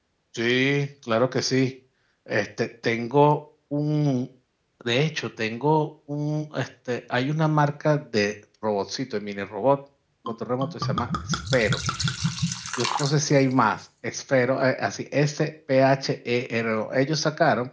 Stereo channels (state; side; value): identical; both; correlation 1.00